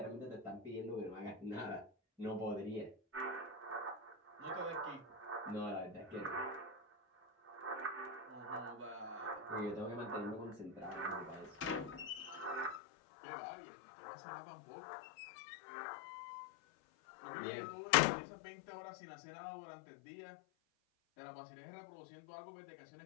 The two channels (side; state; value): right; drops out; at 12.8 s